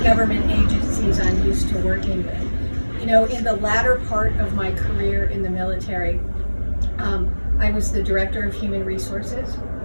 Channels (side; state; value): both; inverted; correlation -1.00